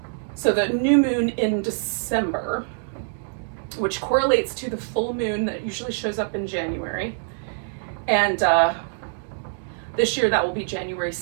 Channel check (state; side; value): silent; left; digital silence